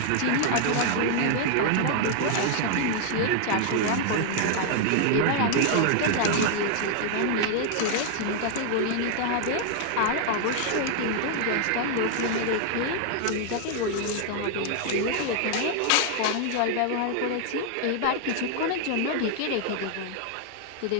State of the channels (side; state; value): both; different; correlation 0.00